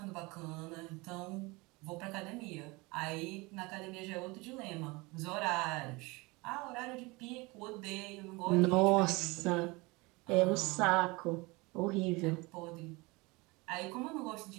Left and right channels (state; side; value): quieter; left; 24.7 dB